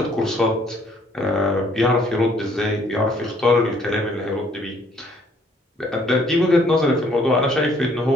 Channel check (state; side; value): normal; both; correlation 0.63